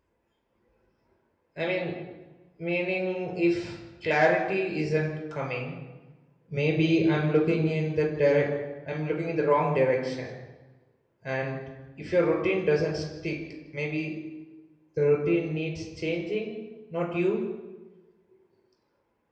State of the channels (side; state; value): both; identical; correlation 1.00